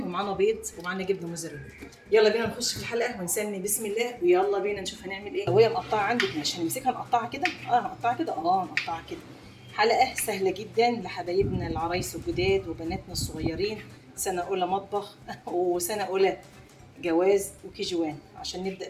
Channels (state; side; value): identical; both; correlation 1.00